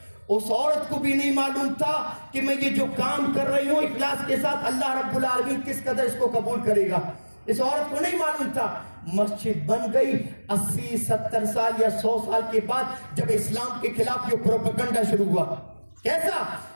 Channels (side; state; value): both; inverted; correlation -1.00